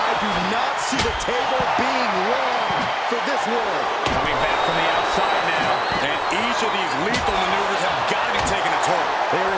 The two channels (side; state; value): both; identical; correlation 1.00